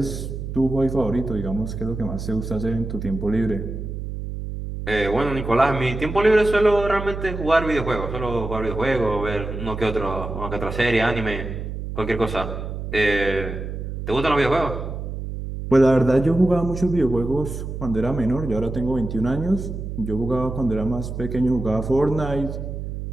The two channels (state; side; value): noise; right; hum, 6 dB below the sound